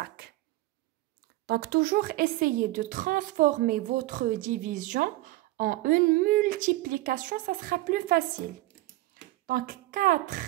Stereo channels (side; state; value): left; quieter; 17.9 dB